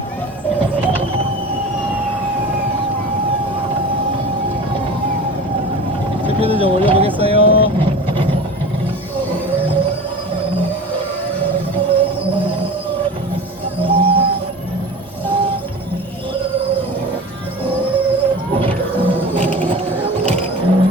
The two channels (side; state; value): both; normal; correlation 0.34